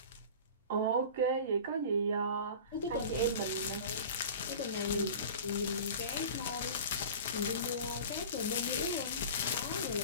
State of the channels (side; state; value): both; inverted; correlation -0.37